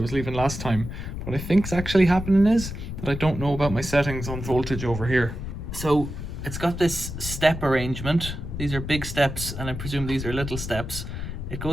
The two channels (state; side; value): noise; left; rumble, 7 dB below the sound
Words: was leaving last time. What I think's actually happening is that I don't know about my settings on voltage over here. So it's got this step arrangement. These are big steps and I presume these are little steps. It